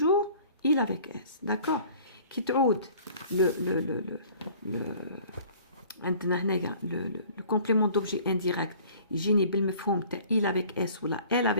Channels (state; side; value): inverted; both; correlation -0.50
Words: il avec s. d'accord كي تعود عندنا هنايا le complément d'objet indirect يجيني بالمفهوم تاع il avec s ولا elle